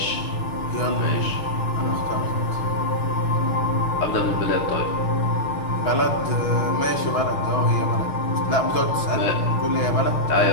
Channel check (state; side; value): late; right; 6.2 ms